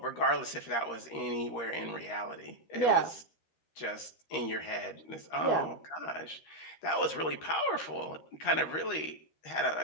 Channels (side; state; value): right; late; 13 ms